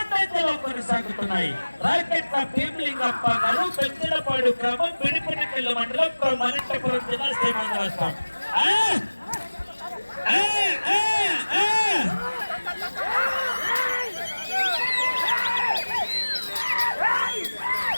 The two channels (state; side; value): inverted; both; correlation -1.00